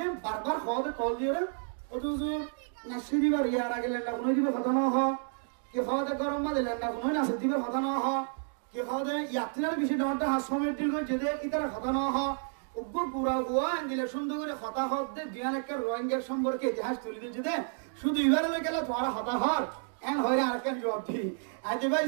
বারবার খাওয়াতে কল দিয়ে অথচ নাসি দিবার ইয়ার আগে লেন্ডা কোনো দিবার কথা না হ কি খাওয়াতে গরম মাঝে লেন্ডা কোনো নাসি দিবার কথা না হ কি খাওয়াতে ইয়াত্রার বেশি ডাউনটা হাস সময় টিল করে যেতে ইতারা কথা না হ উগ্র পুরা গোয়া দিলে সুন্দর করে হতা হত দে দুয়ান একটা রোহিঙ্গার সম্পর্কে ইতিহাস তুলে দিয়ে যেতে শুধু এবারে গেলে তোমার হতা হর এন হইরে আর কেন জবাব দি আজে ভাই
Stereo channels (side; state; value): left; silent; 57 dB below the other